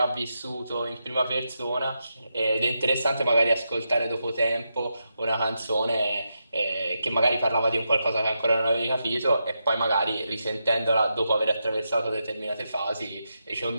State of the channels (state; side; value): inverted; both; correlation -0.85